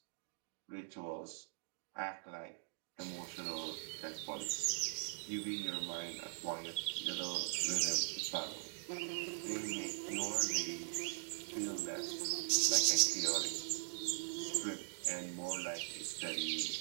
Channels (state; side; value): silent; left; digital silence